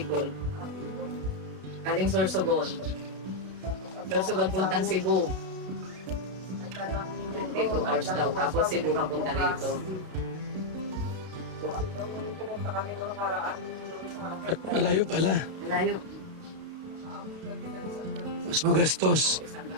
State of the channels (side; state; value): left; late; 32 ms